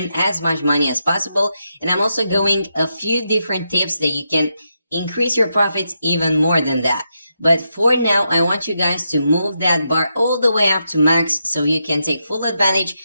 as much money as possible. And I'm also going a few different tips that you can increase your profits even more than that. But for now, I want you guys to move that bar all the way up to max so you can take full advantage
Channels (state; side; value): inverted; both; correlation -0.84